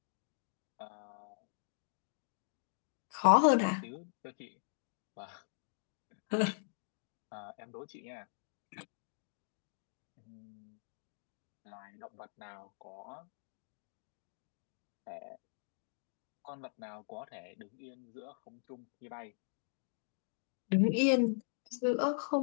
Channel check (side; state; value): right; silent; digital silence